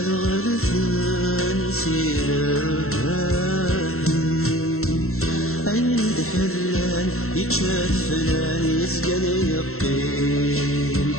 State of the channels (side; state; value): right; late; 0.63 ms